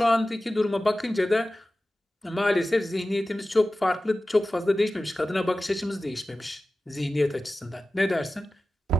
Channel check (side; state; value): both; normal; correlation 0.95